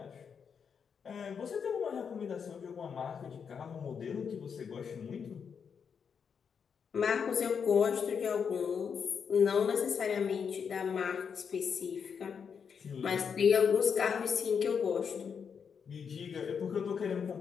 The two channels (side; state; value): right; quieter; 6.7 dB